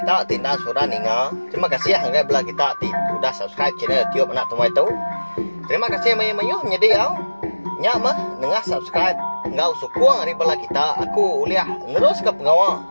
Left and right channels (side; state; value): both; inverted; correlation -1.00